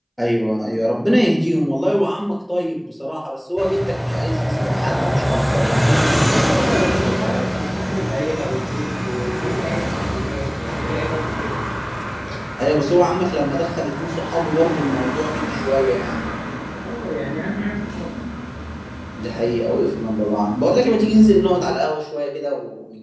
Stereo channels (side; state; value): both; identical; correlation 1.00